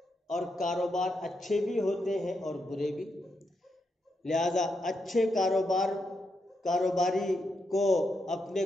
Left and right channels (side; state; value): both; normal; correlation 0.82